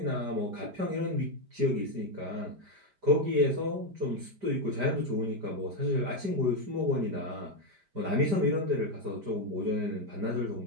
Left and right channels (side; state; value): left; late; 5.1 ms